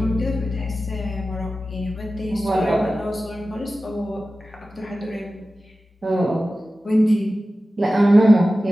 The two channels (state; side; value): normal; both; correlation 0.95